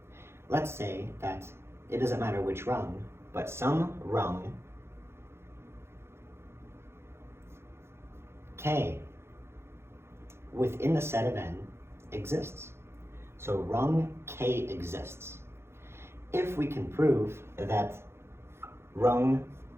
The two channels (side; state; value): left; late; 0.12 ms